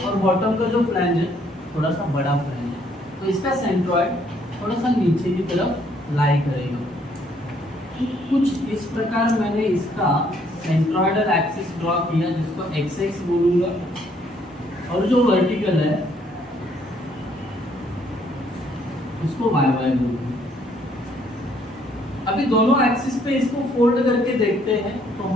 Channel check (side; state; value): both; normal; correlation 0.66